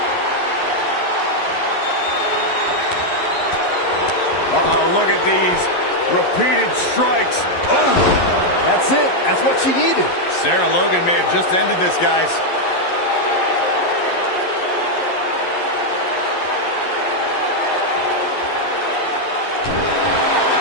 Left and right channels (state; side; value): late; right; 11 ms